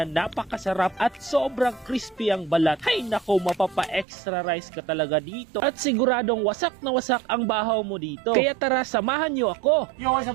napakasarap at sobrang crispy ang balat. Hay nako, mapapa-extra rice ka talaga dito at siguradong wasak na wasak ang bahaw mo dito. Kaya tara, samahan nyo ako. Yo, what's up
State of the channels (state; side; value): drops out; left; at 4.0 s